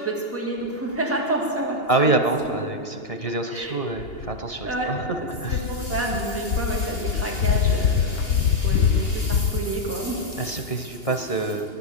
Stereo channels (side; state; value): right; late; 2.8 ms